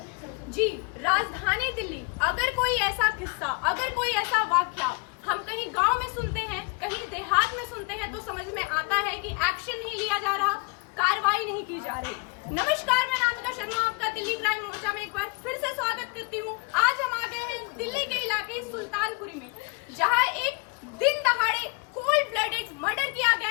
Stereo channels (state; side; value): quieter; right; 31.3 dB